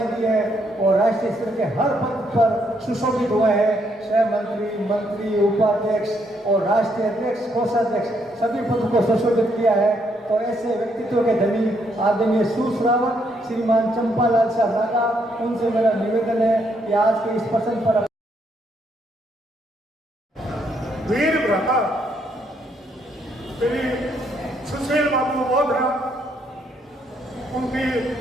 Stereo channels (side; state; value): both; normal; correlation 0.73